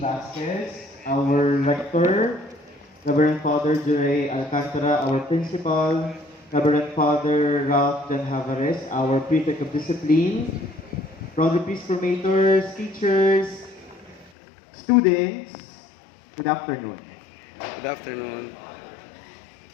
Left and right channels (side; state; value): right; drops out; at 14.3 s